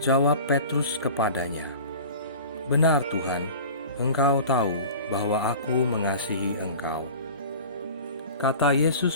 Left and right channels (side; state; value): both; inverted; correlation -0.38